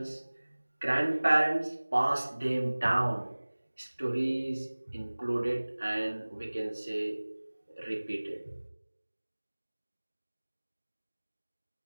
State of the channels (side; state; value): both; inverted; correlation -1.00